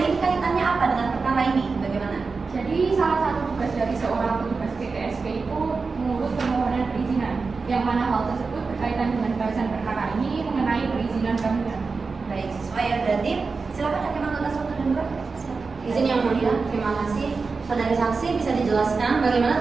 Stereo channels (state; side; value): quieter; left; 4.4 dB